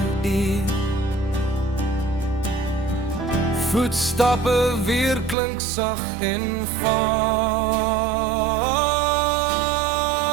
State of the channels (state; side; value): drops out; left; at 5.4 s